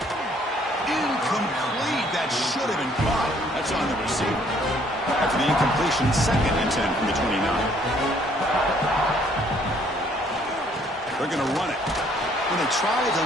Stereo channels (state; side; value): normal; both; correlation 0.63